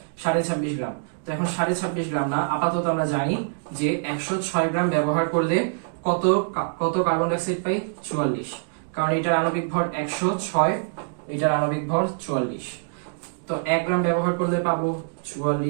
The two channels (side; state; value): left; silent; digital silence